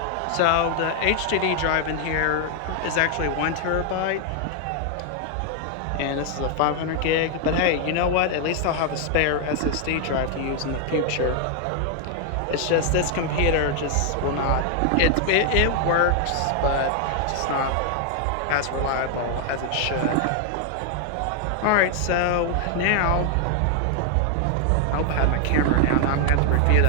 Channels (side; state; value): both; different; correlation 0.00